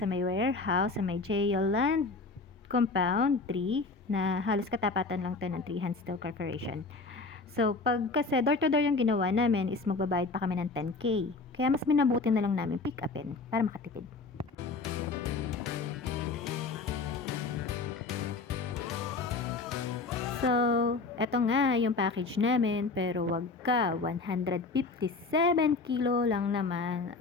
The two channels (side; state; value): right; quieter; 3.9 dB